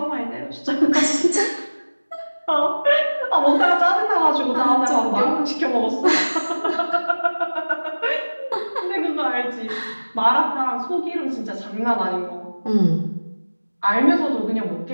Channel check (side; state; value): both; inverted; correlation -1.00